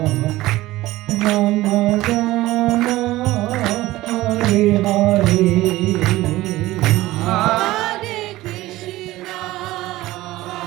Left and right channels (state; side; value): quieter; left; 17.5 dB